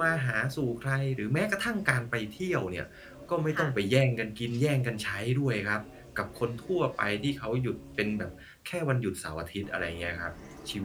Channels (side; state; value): both; identical; correlation 1.00